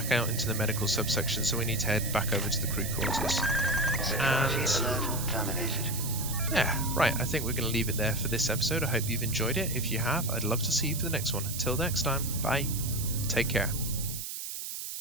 out into the medical subsection, so we need to head back over to the crew quarters. And yeah, right, I think we're going to leave it there for this episode. I hope you've enjoyed it. If you have, I'd love to see you for the next one. Until next time, bye. Take care.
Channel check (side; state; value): right; noise; hiss, 6 dB below the sound